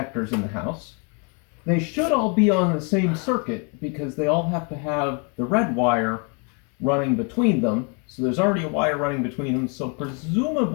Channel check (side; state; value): right; quieter; 34.9 dB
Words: in the house. They should all be on the same circuit because they all have to have the red wire running between them. So there's already a wire running between them, so